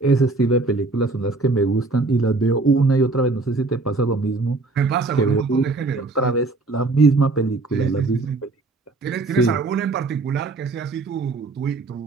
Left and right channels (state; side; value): quieter; left; 3.5 dB